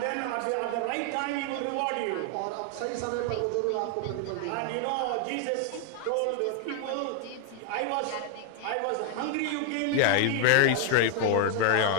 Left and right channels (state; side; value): different; both; correlation 0.00